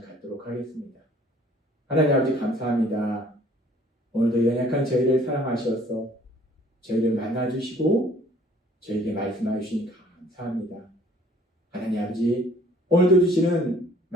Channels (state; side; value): normal; both; correlation 0.56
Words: 갖도록 하겠습니다. 하나님 아버지 감사합니다. 오늘도 연약한 저희를 사랑하셔서 저희를 만나주시고 저에게 말씀해 주시니 감사합니다. 하나님 아버지 오늘도 주시는